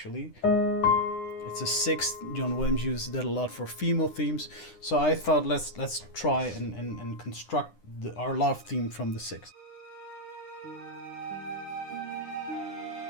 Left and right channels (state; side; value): late; right; 9.8 ms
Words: It's a sixth. John Williams uses that a lot for female themes. So I thought let's try and construct our love theme from the sixth.